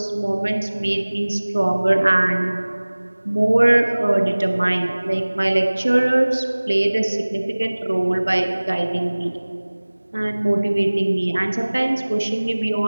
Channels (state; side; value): inverted; both; correlation -1.00